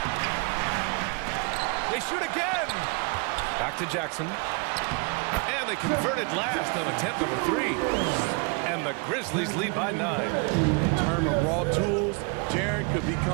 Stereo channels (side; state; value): left; quieter; 32.9 dB